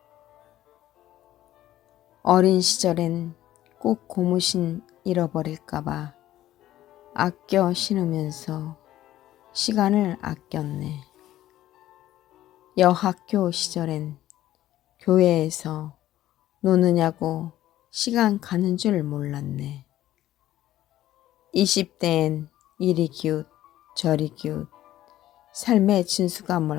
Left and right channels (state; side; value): quieter; right; 13.8 dB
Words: 어린 시절엔 꼭 고무신 잃어버릴까봐 아껴 신으면서 시간을 아꼈네. 여학교 시절엔 교회에서 노느냐고 시간 가는 줄 몰랐네. 20대엔 이리 기웃 저리 기웃 삶의 진수가